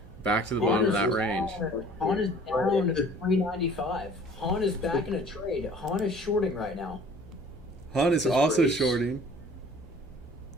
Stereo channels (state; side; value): normal; both; correlation 0.50